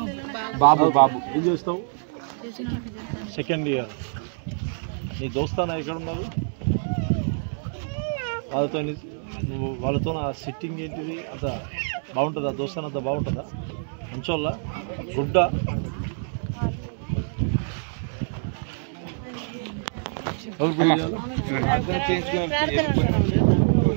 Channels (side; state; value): left; silent; digital silence